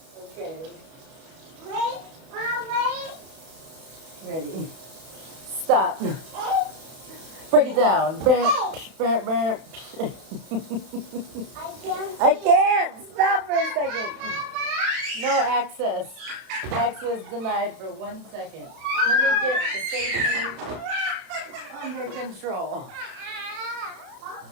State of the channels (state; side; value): late; left; 31 ms